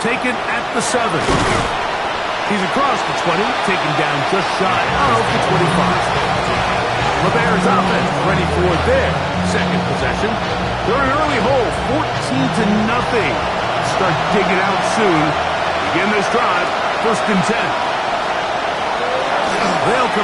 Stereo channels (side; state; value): both; identical; correlation 1.00